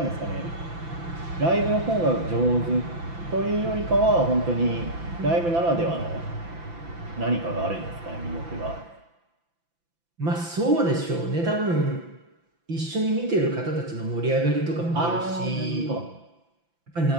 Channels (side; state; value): left; late; 5.9 ms